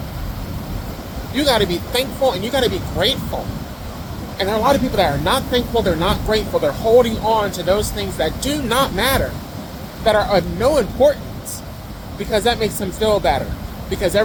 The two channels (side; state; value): both; identical; correlation 1.00